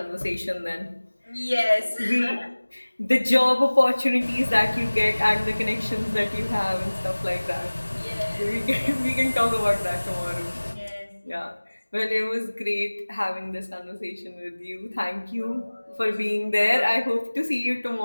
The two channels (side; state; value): both; inverted; correlation -1.00